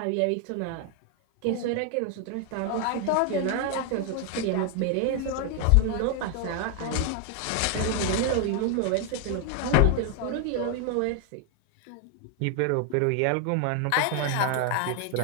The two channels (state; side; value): different; both; correlation 0.00